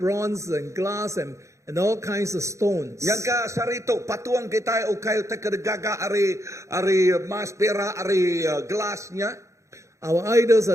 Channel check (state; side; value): late; left; 0.15 ms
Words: and glass and all kinds of stones. Yang ka sarito patuang kita ukay te kedegaga ari mas perak ari gelasnya. Our idols are